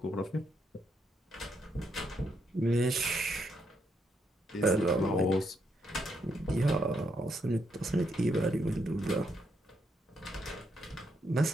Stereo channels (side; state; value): both; normal; correlation 0.78